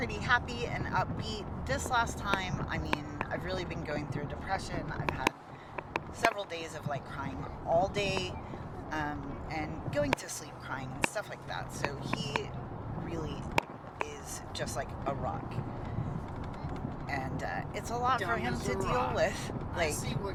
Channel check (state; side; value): identical; both; correlation 1.00